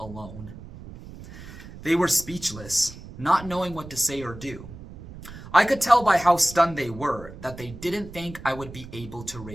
They were speechless, not knowing what to say or do. I could tell by how stunned they were that they didn't think I would be able to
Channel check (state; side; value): noise; right; rumble, 15 dB below the sound